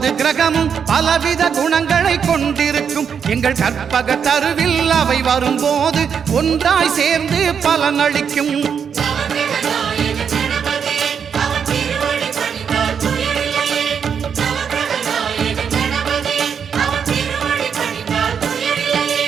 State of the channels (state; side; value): quieter; left; 7.1 dB